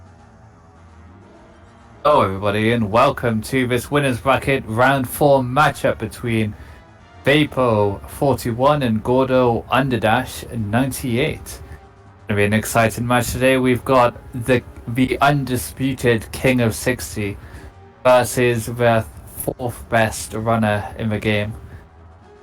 Hello everybody and welcome to this winners bracket round 4 matchup between Vapo 41 and Gordo Underdash 98. Gonna be an exciting match today. We've got the undisputed King of 60 versus the 4th best runner in the game.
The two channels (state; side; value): identical; both; correlation 1.00